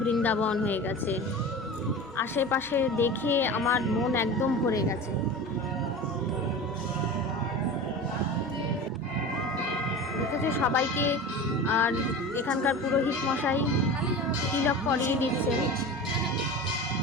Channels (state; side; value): normal; both; correlation 0.32